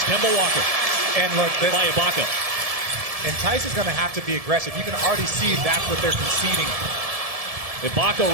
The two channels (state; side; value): late; left; 1.7 ms